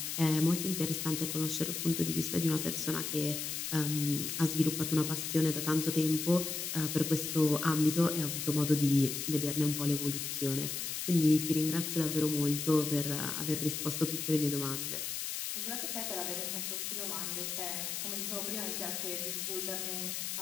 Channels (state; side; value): noise; left; hiss, 3 dB below the sound